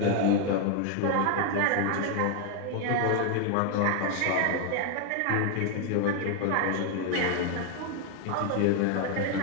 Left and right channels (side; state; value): both; different; correlation 0.01